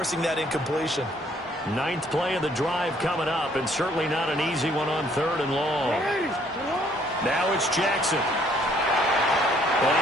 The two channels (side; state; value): both; normal; correlation 0.64